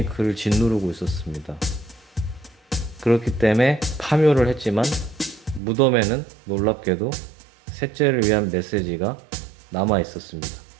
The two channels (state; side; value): drops out; left; at 5.6 s